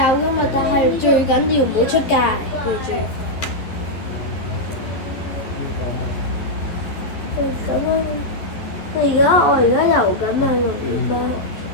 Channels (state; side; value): late; right; 11 ms